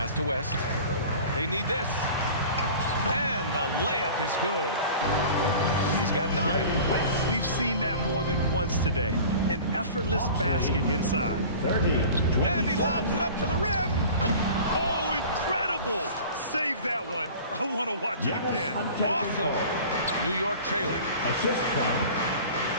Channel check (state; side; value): inverted; both; correlation -0.41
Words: to West. They need this. And the layup is good. He's got 9. We've seen that more than once today. An effortless basket inside. 30. And he lobs it up to the rim. Oh, incredible. Save that one. I want to watch it again. Awesome. New York trailing. Assist from